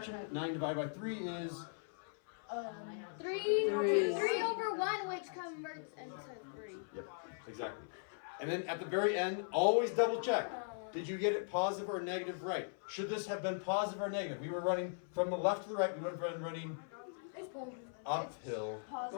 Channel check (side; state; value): right; silent; 52 dB below the other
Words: 9 divided by 3 is 3 Three. over 1, which converts into 3. Yep, exactly. And then at the very end, always double check. Did you get it positive or negative right? Should this have been positive or negative? We were running from the left to the right. We would have been running uphill.